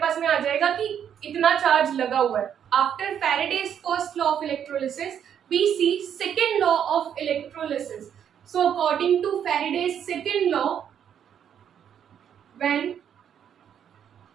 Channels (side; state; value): left; quieter; 8.9 dB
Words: में आ जाएगा कि इतना चार्ज लगा हुआ है। After Faraday's first law of electrolysis we see second law of electrolysis. So according to Faraday's second law, when